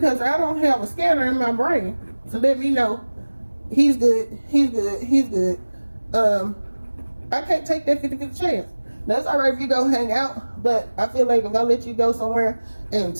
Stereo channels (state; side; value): inverted; both; correlation -1.00